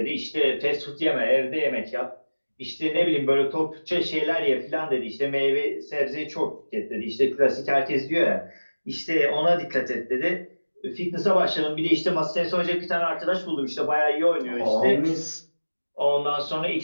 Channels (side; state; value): both; inverted; correlation -1.00